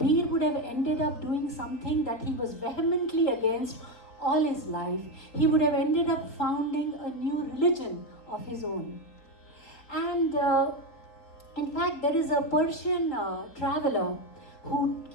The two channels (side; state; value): right; late; 3.8 ms